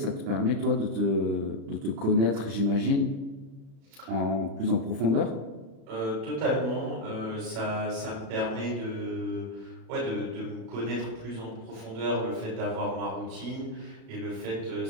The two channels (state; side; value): late; left; 36 ms